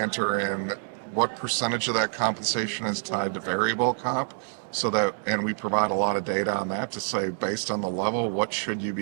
what percentage of that compensation is tied to variable comp, and we provide a lot of data on that to say, based on the level, what should you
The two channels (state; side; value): silent; left; digital silence